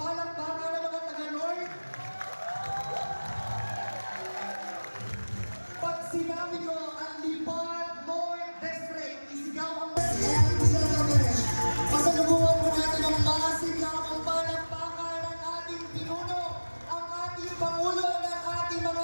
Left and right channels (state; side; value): inverted; both; correlation -1.00